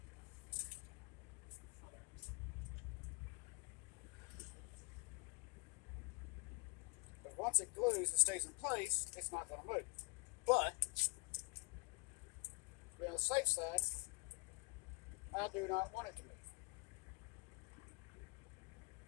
Once it glues and stays in place, it's not going to move. But, to be on the safe side, I do not want it to move.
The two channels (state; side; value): quieter; right; 30.0 dB